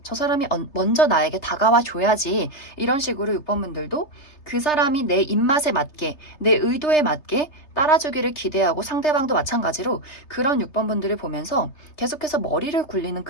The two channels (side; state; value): right; late; 3.3 ms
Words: 저 사람이 먼저 나에게 다가와 줘야지. 이런 식으로 6번분들도 그 사람이 내 입맛에 맞게, 내 의도에 맞게 따라주기를 기대하고, 상대방도 마찬가지로 그런 6번분들을 보면서 계속해서 머리를 굴리는